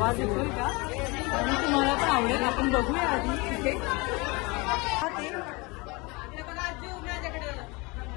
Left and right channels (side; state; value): right; quieter; 26.3 dB